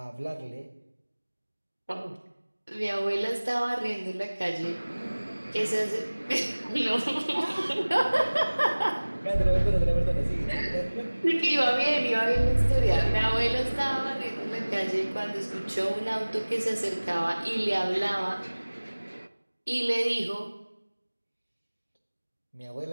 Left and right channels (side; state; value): both; inverted; correlation -1.00